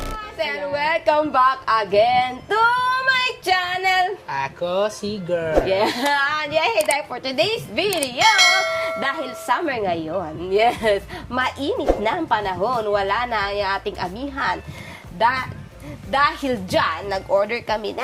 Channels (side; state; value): both; identical; correlation 1.00